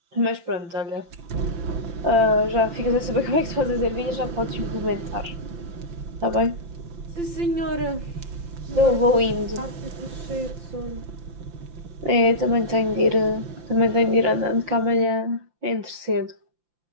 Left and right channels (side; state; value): left; late; 5.8 ms